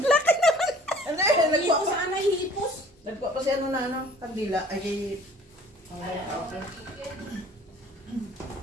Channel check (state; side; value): normal; both; correlation 0.50